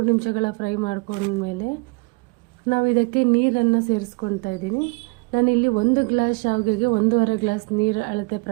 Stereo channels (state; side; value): quieter; left; 30.6 dB